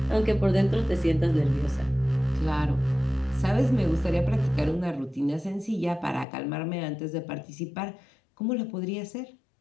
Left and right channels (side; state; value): right; drops out; at 6.2 s